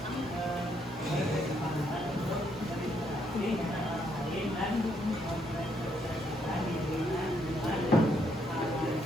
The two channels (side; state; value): both; normal; correlation 0.74